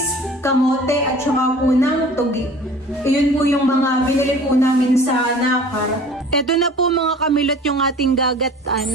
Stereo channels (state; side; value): normal; both; correlation 0.45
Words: kamote at saka po ng tugi. Iyon po yung mga binili po namin sa Nakar. Ito na po mga kamilot yung ating